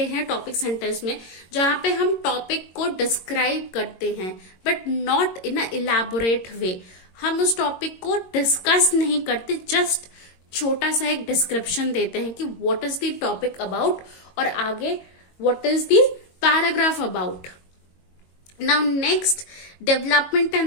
हैं टॉपिक सेंटेंस में, जहां पे हम टॉपिक को डिस्क्राइब करते हैं, but not in a elaborate way. हम उस टॉपिक को डिस्कस नहीं करते, जस्ट छोटा सा एक डिस्क्रिप्शन देते हैं कि what is the topic about, और आगे what is the paragraph about. Now next, development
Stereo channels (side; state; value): right; late; 22 ms